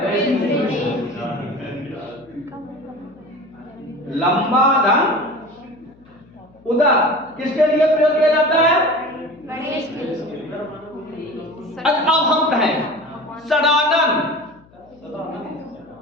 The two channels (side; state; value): left; noise; hum, 28 dB below the sound